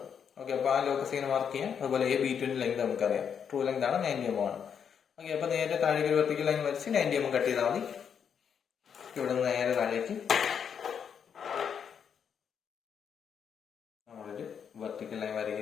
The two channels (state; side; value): quieter; right; 7.5 dB